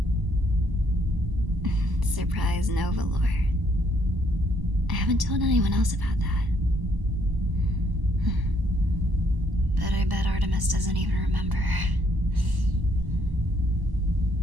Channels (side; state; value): left; late; 1.1 ms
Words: Surprise Nova lore. I haven't told anyone else about that. But I bet Artemis doesn't even remember.